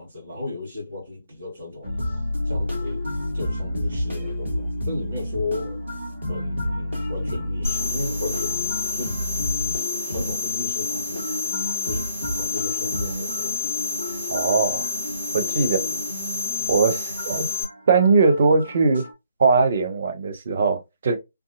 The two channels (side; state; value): both; inverted; correlation -0.68